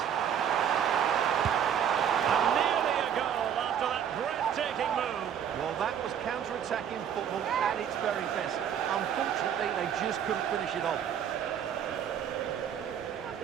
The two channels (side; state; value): left; quieter; 8.9 dB